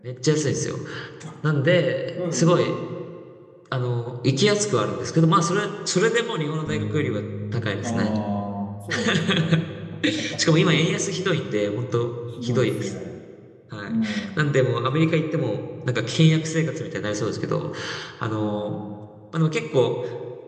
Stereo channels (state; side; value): identical; both; correlation 1.00